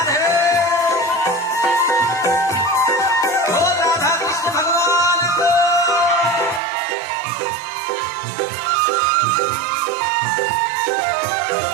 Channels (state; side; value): drops out; left; at 6.6 s